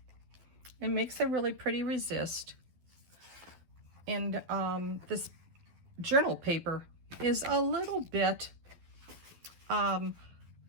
It makes a really pretty resist. And this journal paper is a little bit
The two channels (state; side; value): late; left; 12 ms